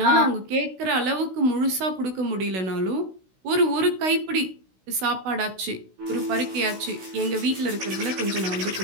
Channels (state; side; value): late; left; 16 ms